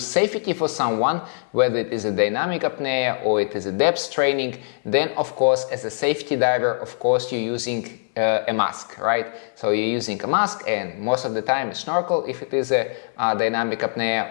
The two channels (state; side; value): silent; right; digital silence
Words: for someone, whether it is a dynamic apnea or it is a depth training, then of course as a safety diver, of course you're using a mask, right? So you're using a mask, and most of the time a snorkel if it is a dynamic apnea,